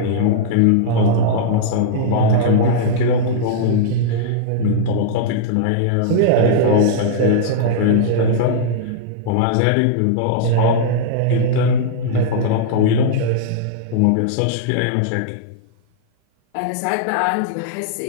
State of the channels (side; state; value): both; different; correlation -0.02